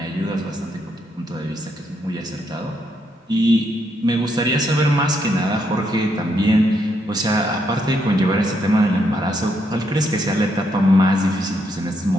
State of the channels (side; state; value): both; normal; correlation 0.76